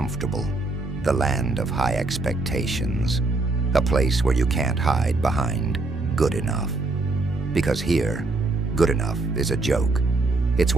the land of high expectations, a place where you can't hide behind good enough. Because here, good enough is a joke. It's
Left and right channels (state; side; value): quieter; left; 3.3 dB